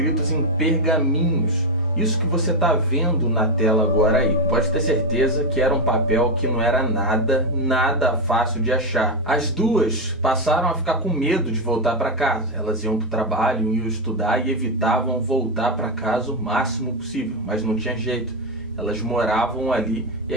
em pergaminhos. Isso que você está vendo na tela agora aí. Pode ter certeza que era um papel que não era nada fácil de achar. As duas passaram a ficar com medo de voltar para casa. Elas iam para o trabalho, iam estudar e evitavam voltar para casa o máximo possível. Mas não tinha jeito. Elas moravam ali e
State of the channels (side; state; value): both; normal; correlation 0.07